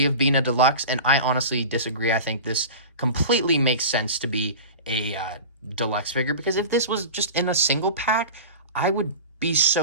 of being a deluxe, and I honestly disagree. I think this completely makes sense to be a deluxe figure, because if this was just in a single pack, I would be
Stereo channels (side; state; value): both; inverted; correlation -0.32